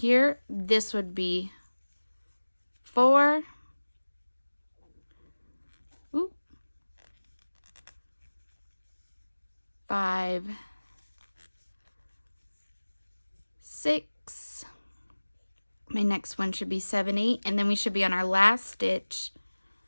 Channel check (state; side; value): inverted; both; correlation -1.00